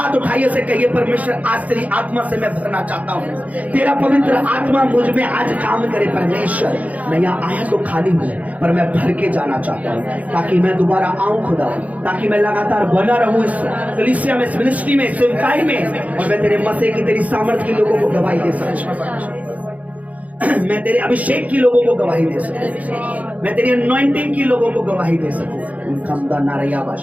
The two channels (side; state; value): left; late; 0.071 ms